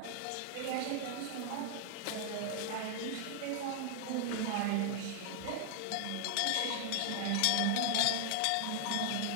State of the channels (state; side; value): different; both; correlation 0.00